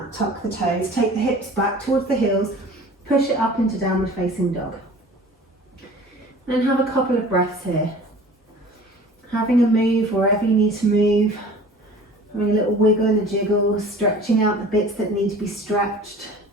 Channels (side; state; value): both; normal; correlation 0.44